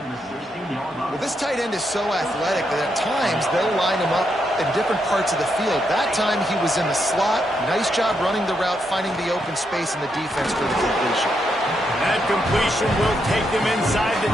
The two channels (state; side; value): normal; both; correlation 0.80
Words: Well, this tight end is so athletic that at times they'll line him up in different parts of the field. That time he was in the slot. Nice job running the route, finding the open space in the defense for the completion. That completion will take them inside the